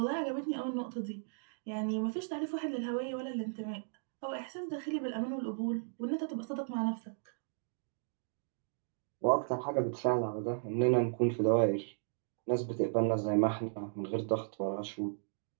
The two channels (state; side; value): silent; left; digital silence